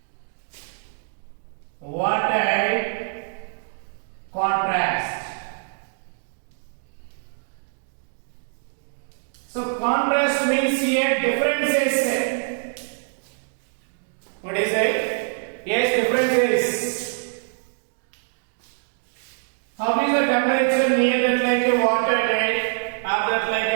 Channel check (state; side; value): silent; left; digital silence